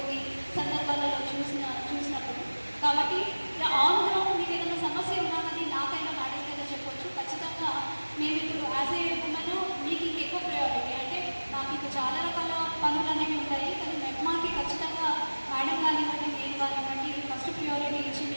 సందర్భాలలో చూసినప్పుడు. కాబట్టి ఆన్ గ్రౌండ్ మీకు ఏదైనా సమస్య ఉన్నానని నాకైనా మేడంకైనా చెప్పొచ్చు. ఖచ్చితంగా మేము ఇప్పుడు యాజ్ ఏ ఉమెన్ మీకు ఇంకెక్కువ ప్రయారిటీ అంటే నాకు ఇంకా చాలా రకాల పనులు అనేవి ఉంటాయి, కానీ మెట్మాకి ఖచ్చితంగా మేడం కానివ్వండి, నేను కానివ్వండి ఫస్ట్ ప్రియారిటీ ఇచ్చి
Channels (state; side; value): inverted; both; correlation -1.00